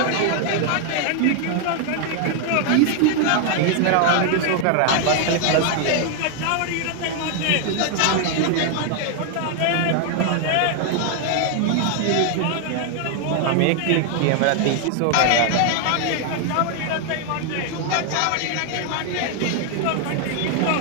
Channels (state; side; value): different; both; correlation 0.00